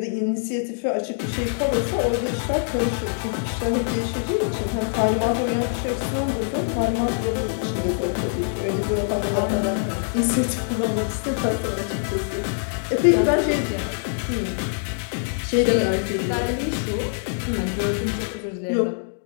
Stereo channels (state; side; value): silent; right; digital silence